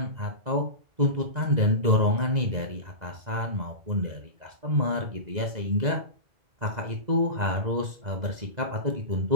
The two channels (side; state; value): left; late; 2.0 ms